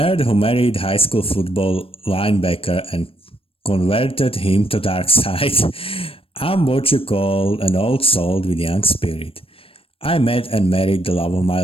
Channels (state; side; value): late; right; 0.27 ms